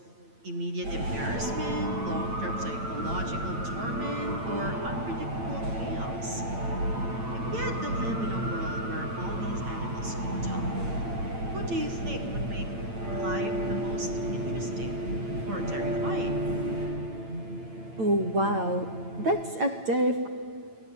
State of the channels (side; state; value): left; late; 8.9 ms